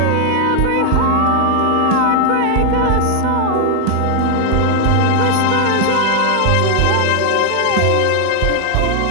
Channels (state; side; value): different; both; correlation 0.01